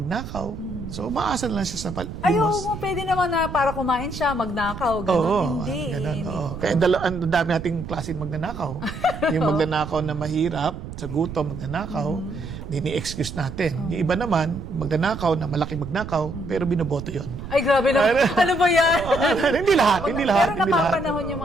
So umaasa lang siya sa Ayaw palimos. mo, pwede naman na para kumain siya, magnakaw. Ganun. Oo, Hindi. ganun, Hindi. oo. Kaya ang dami nating klase magnanakaw. Yung magnanakaw na mahirap, sa gutom magnanakaw, ni-excuse natin. Yung iba naman, magnanakaw na malaking magnakaw, pero binoboto yon. Ay, grabe na. Ano ba yan? Hindi lahat, hindi lahat. Pero hindi lahat. napapanahon yung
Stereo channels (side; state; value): right; noise; rumble, 10 dB below the sound